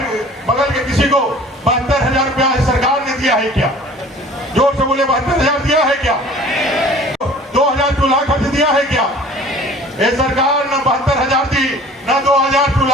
बगल के किसी को 72,000 रुपया सरकार ने दिया है क्या? जोर से बोले, 72,000 दिया है क्या? 2,000 चूल्हा खर्च दिया है क्या? ये सरकार न 72,000 दी, न 2,000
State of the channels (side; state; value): both; normal; correlation 0.47